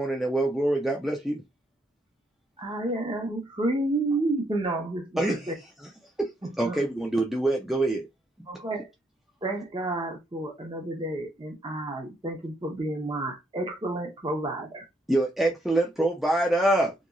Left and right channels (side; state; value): both; normal; correlation 0.75